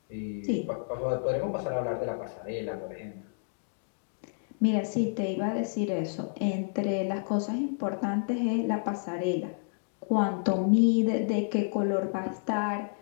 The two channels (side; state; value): right; silent; digital silence